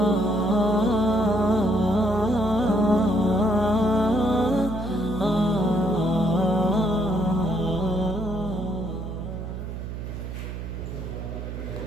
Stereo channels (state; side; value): noise; right; hum, 7 dB below the sound